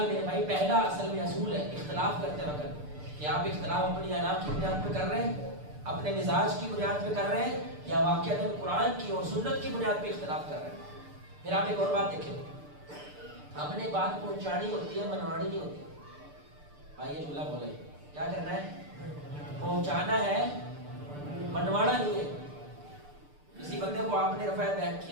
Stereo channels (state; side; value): late; left; 6.8 ms